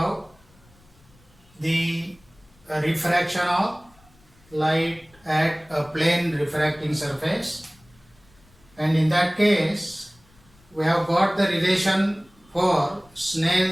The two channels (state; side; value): noise; left; rumble, 30 dB below the sound